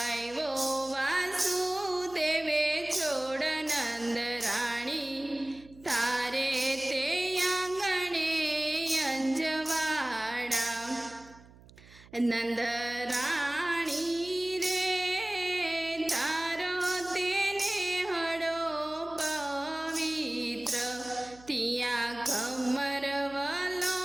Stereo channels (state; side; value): noise; right; hum, 23 dB below the sound